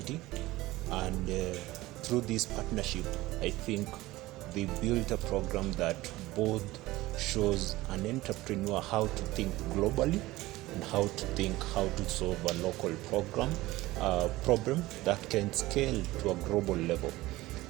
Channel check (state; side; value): quieter; left; 18.3 dB